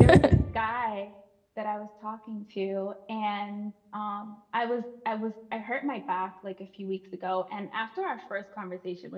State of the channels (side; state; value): both; identical; correlation 1.00